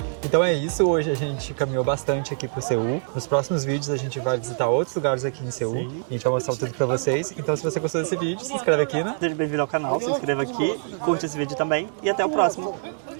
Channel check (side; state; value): left; silent; digital silence